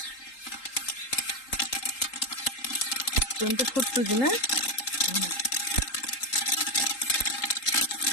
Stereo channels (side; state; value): right; late; 3.8 ms